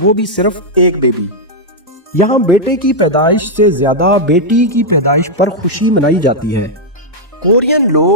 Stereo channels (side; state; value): both; normal; correlation -0.05